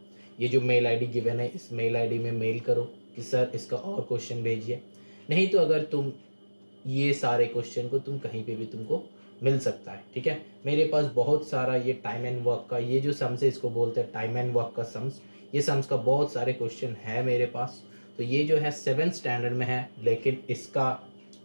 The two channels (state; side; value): inverted; both; correlation -1.00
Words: ये जो मेल आईडी गिवन है इस मेल आईडी में मेल करो कि सर इसका और क्वेश्चन भेजिए। नहीं तो अगर तुम ये सारे क्वेश्चन को तुम कहीं पे भी तुमको मिल सकता है, ठीक है। मेरे पास बहुत सारा ये टाइम एंड वर्क का ये जो सम्स है इसको बोलते हैं टाइम एंड वर्क का सम्स। ये सम्स का बहुत सारे क्वेश्चन है मेरे पास। तो ये जो है 7th स्टैंडर्ड में है, लेकिन इसका